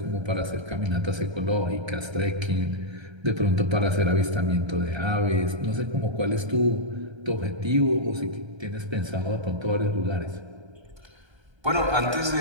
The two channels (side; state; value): left; late; 1.3 ms